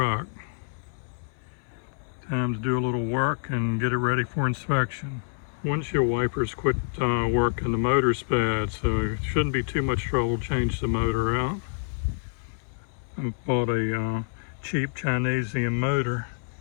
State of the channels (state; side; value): silent; right; 60 dB below the other